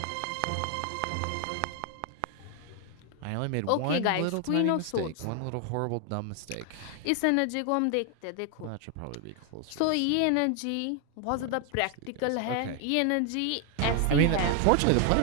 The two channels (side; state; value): both; different; correlation 0.01